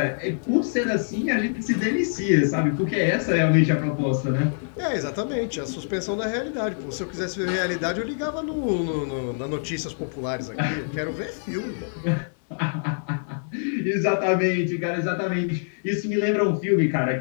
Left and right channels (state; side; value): silent; right; 62 dB below the other